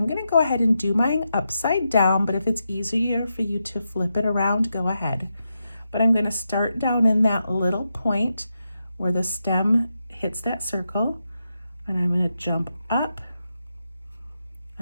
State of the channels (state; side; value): inverted; both; correlation -0.87